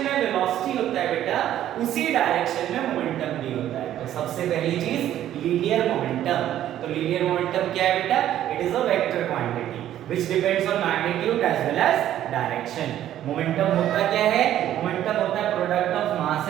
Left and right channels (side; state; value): left; quieter; 12.0 dB